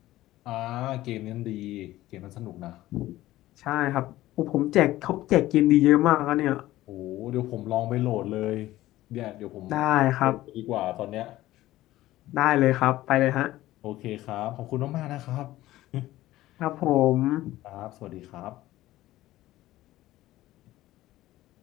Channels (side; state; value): right; quieter; 15.9 dB